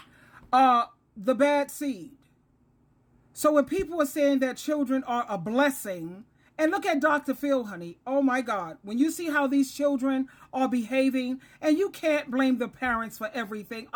The Bad Seed. So when people are saying that children are a blessing, and look at Dr. Phil, honey. Oh my God. When you see how these children are behaving, and you can't blame the parents for everything.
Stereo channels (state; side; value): identical; both; correlation 1.00